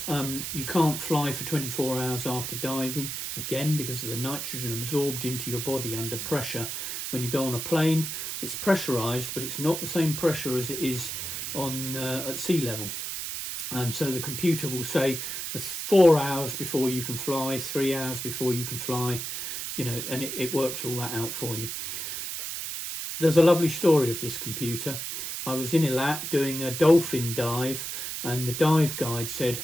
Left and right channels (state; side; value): noise; right; hiss, 5 dB below the sound